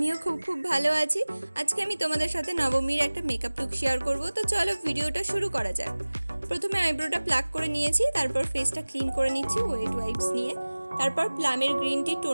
খুব ভালো আছি। আজকে আমি তোমাদের সাথে নবমীর একটা মেকআপ লুক শেয়ার করব। তো চলো ভিডিওটা শুরু করা যাক। প্রথমে আইব্রোটা প্লাক করে নিয়েছি, তারপর ফেসটা ক্লিন করে নিচ্ছি ওয়েট ওয়াইপস নিয়ে। তারপর প্লামের গ্রিন টি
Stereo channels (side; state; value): both; inverted; correlation -1.00